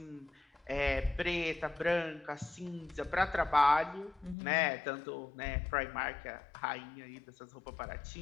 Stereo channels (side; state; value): right; drops out; at 4.4 s